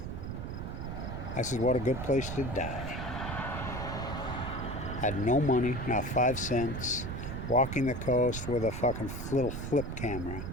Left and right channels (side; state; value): right; noise; rumble, 5 dB below the sound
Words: I said, what a good place to die. Had no money, not 5 cents. Walking the coast with a fucking little flip camera.